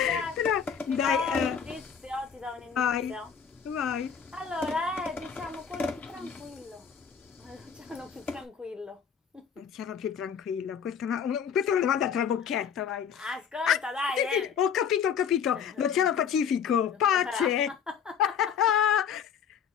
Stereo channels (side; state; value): right; quieter; 7.5 dB